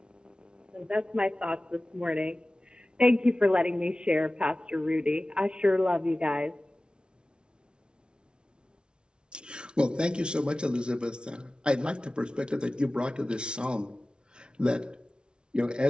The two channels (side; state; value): left; late; 0.055 ms